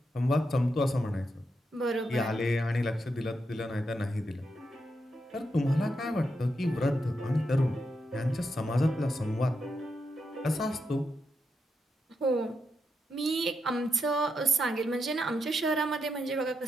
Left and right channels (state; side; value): normal; both; correlation 0.84